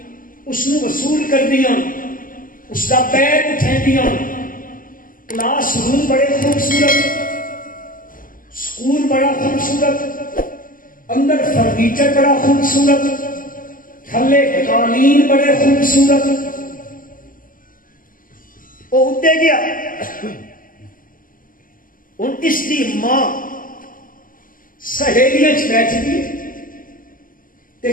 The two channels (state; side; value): late; right; 0.40 ms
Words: اس نو وصول کر دیا، اس کا بیگ اٹھا دیا، کلاس روم بڑے خوبصورت، سکول بڑا خوبصورت، اندر فرنیچر بڑا خوبصورت، تھلے قالین بڑے خوبصورت، وہ ادے گیا، ان اس کی ماں سہیلیاں بیٹھ گئی تے